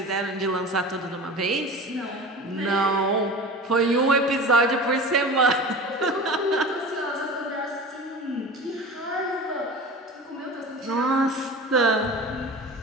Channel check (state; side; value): normal; both; correlation 0.34